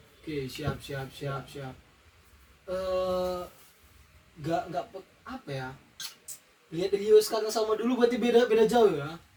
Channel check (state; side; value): identical; both; correlation 1.00